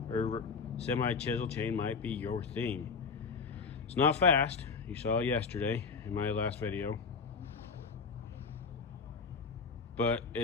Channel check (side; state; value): right; quieter; 5.1 dB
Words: or semi chisel chain might be your thing. It's not fast. You saw it yesterday in my last video, but